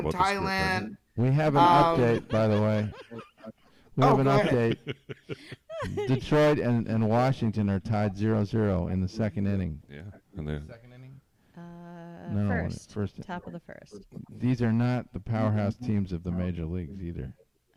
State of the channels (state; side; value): identical; both; correlation 1.00